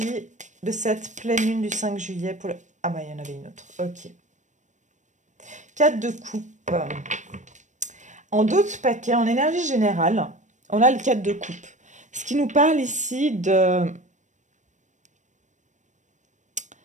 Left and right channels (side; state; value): left; late; 0.35 ms